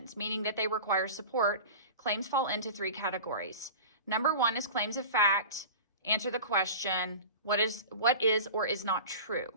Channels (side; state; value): both; inverted; correlation -0.35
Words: meaning that they require support. Claims fall into 3 categories. Number 1 is claims of fact. Answer the question, what is or is not true.